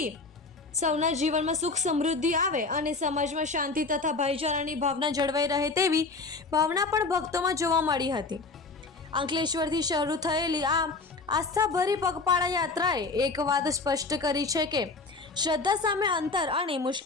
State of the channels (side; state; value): right; quieter; 3.9 dB